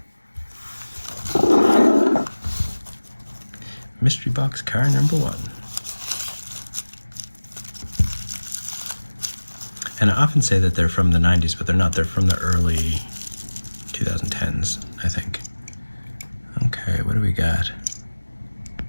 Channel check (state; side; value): inverted; both; correlation -1.00